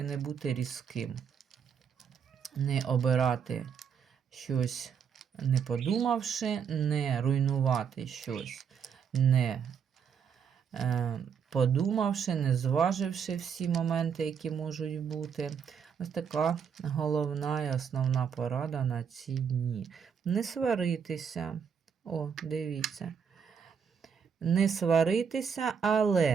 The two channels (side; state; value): left; quieter; 7.1 dB